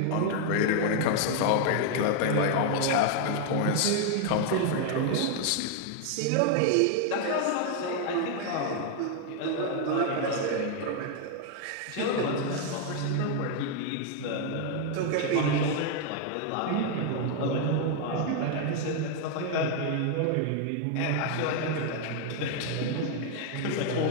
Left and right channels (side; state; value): both; different; correlation 0.00